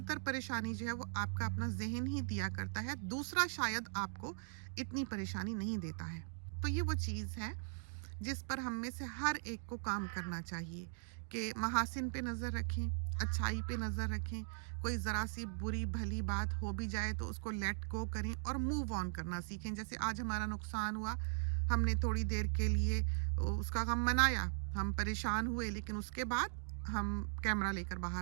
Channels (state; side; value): silent; left; digital silence